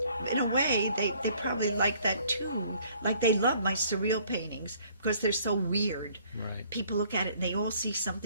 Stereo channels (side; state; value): both; inverted; correlation -0.60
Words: in a way, they probably like that too. Like they love my surreal paintings because they're so weird. Right. People look at it and they all see